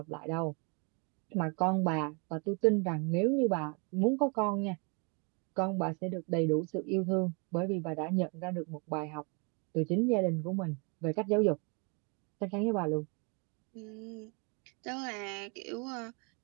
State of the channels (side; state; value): left; quieter; 34.3 dB